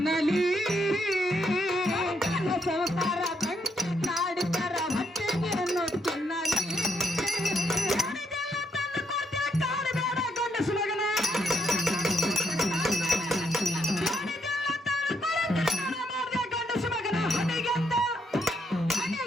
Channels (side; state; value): both; normal; correlation 0.76